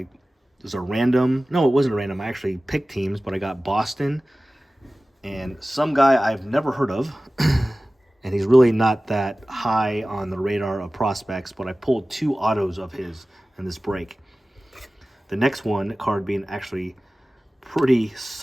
was a random. No, it wasn't a random. I actually picked teams, but I got Boston and some guy I've never heard of. And he's really not that high on the radar of prospects, but I pulled 2 autos of his in this break. The next card being actually pretty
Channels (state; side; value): normal; both; correlation 0.97